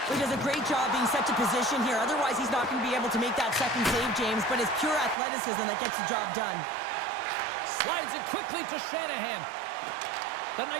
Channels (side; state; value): left; drops out; at 5.2 s